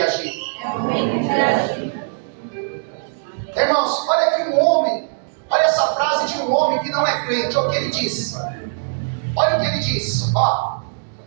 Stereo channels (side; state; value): left; silent; digital silence